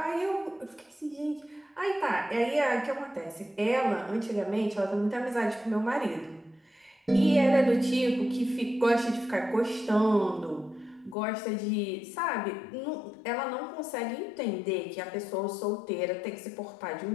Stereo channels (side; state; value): right; drops out; at 11.2 s